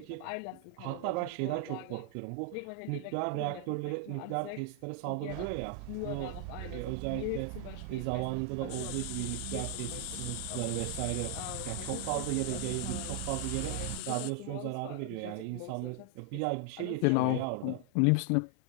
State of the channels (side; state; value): both; different; correlation 0.00